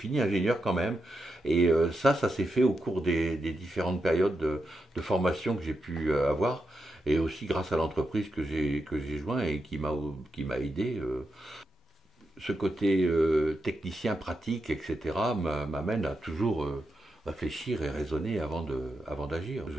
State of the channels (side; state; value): both; normal; correlation 0.86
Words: ingénieur quand même. Et ça s'est fait au cours des différentes périodes de formation que j'ai pu avoir, et aussi grâce à l'entreprise que j'ai joint et qui m'a aidé. Ce côté technicien, pratique, etc. m'amène à toujours réfléchir et raisonner avant d'agir. Je